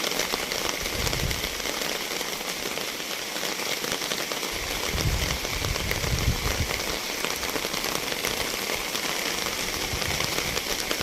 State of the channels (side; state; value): both; identical; correlation 1.00